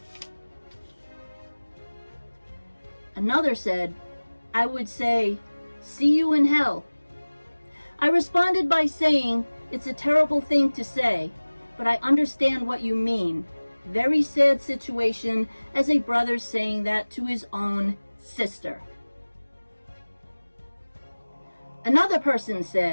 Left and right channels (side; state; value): both; inverted; correlation -1.00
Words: Another said, I would say, see you in hell. I responded by saying, it's a terrible thing to say, but I understand what you mean. Very sad situation as a brother saying that to his own sister. Another person